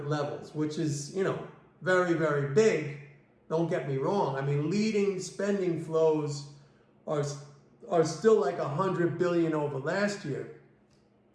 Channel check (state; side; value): identical; both; correlation 1.00